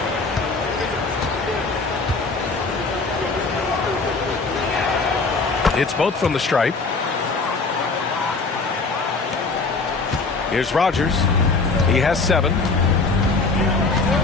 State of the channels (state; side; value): quieter; right; 4.0 dB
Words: It's both from the stripe. Here's Rogers. He has 7.